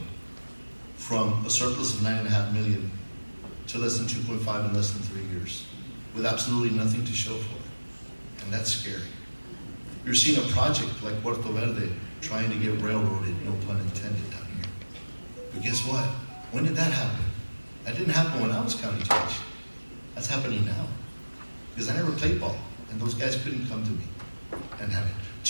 from a surplus of $9.5 million to less than 2.5 in less than 3 years, with absolutely nothing to show for it. And that's scary. You're seeing a project like Puerto Verde trying to get railroaded, no pun intended, down here. But guess what? When did that happen? That didn't happen when I was county judge. That's happening now. Because I never played ball, and those guys couldn't come to me and have it.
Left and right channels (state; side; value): inverted; both; correlation -1.00